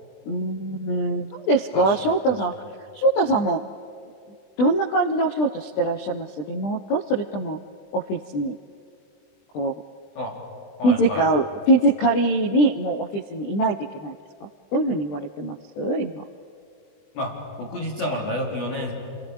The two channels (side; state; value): right; late; 20 ms